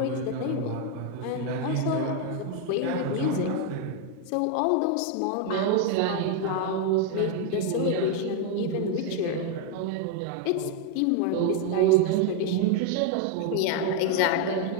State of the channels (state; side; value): different; both; correlation 0.01